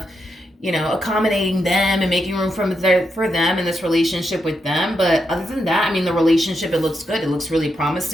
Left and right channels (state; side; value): normal; both; correlation 0.83